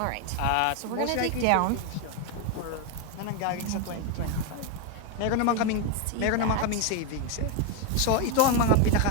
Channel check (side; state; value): both; different; correlation 0.01